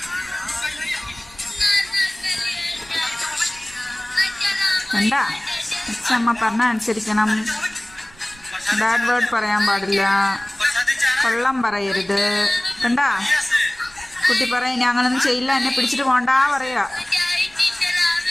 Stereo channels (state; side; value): noise; right; rumble, 25 dB below the sound